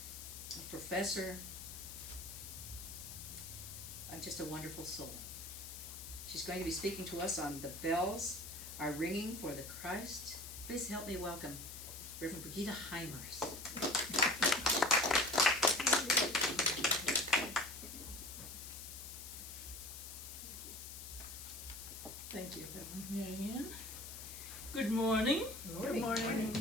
a professor, just a wonderful soul. She's going to be speaking to us on The Bells Are Ringing for the Christ. Please help me welcome Reverend Brigitte Heimers. Thank you, Reverend Marianne. Good morning. Good morning.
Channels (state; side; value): noise; left; hiss, 10 dB below the sound